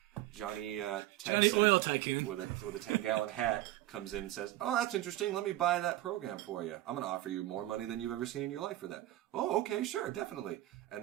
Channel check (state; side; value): quieter; left; 15.6 dB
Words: Texan Johnny Oil Tycoon. with a 10-gallon hat comes in and says, "Oh, that's interesting. Let me buy that program for you. I'm going to offer you more money than you've ever seen in your life for that." "Oh, okay, sure, definitely." And